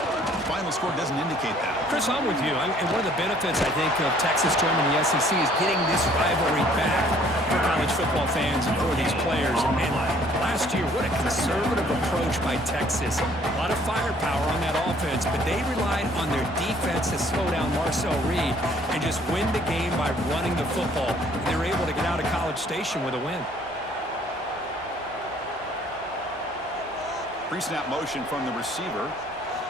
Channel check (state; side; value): normal; both; correlation 0.59